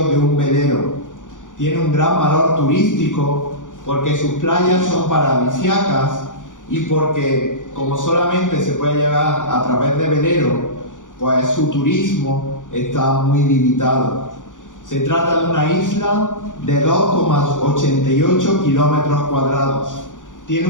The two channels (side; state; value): right; late; 0.87 ms